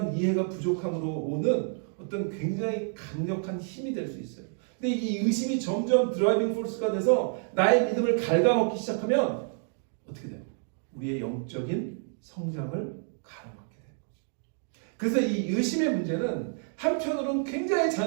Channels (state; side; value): silent; left; 56 dB below the other